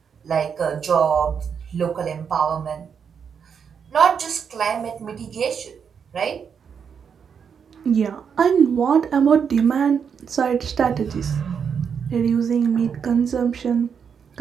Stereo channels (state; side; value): quieter; left; 6.9 dB